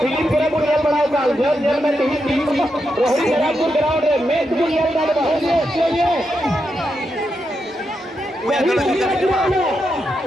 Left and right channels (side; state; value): both; normal; correlation 0.84